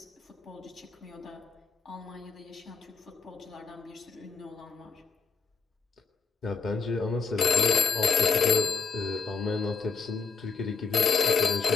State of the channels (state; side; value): quieter; right; 5.0 dB